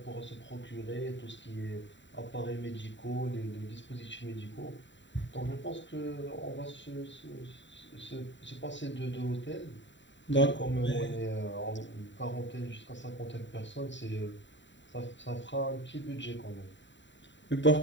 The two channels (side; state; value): right; late; 0.53 ms